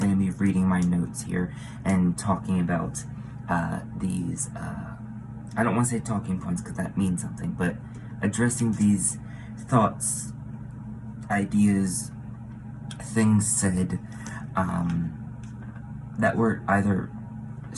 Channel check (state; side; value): identical; both; correlation 1.00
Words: to be reading my notes here and talking about these, I don't want to say talking points because that means something, but addressing these thoughts, ideas, things said that were either